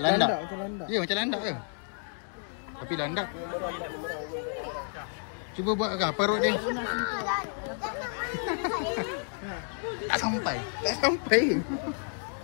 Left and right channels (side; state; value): right; silent; 57 dB below the other